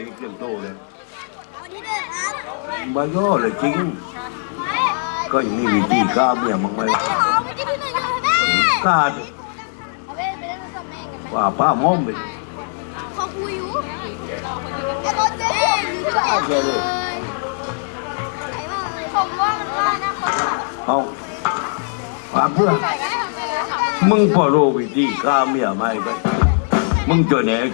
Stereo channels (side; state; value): right; silent; digital silence